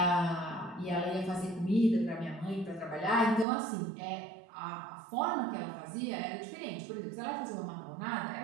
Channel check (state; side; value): drops out; left; at 3.5 s